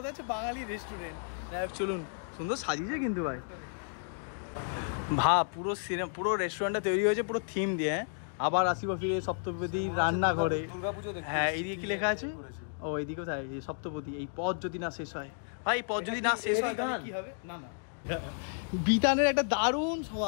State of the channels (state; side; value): silent; right; digital silence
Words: হচ্ছে বাঙালি রেস্টুরেন্ট। যাই হোক চলুন, সুন্দর সাজিয়েছে কিন্তু ভাই। পুরো সিনেমা, পুরো রেস্টুরেন্টটা তৈরি হয়েছে পুরো থিম দিয়ে। আবার আসিব ফিরে সপ্তপদী রান্না করে। হ্যাঁ, এইদিকে কি লেখা আছে? ও এইদিকে কোথায়? সপ্তপদী। এই পথ যদি না শেষ হয় ভাই, পথ যদি না শেষ হয় তাহলে কি হবে? না না, বিতানের একটা দারুণ